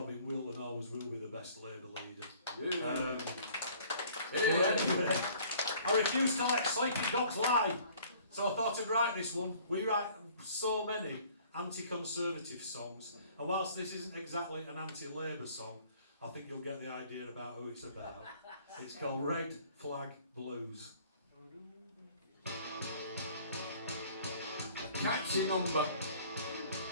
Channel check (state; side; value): inverted; both; correlation -0.54